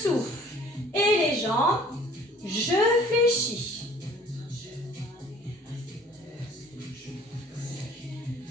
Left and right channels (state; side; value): normal; both; correlation 0.52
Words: Et les jambes, je fléchis.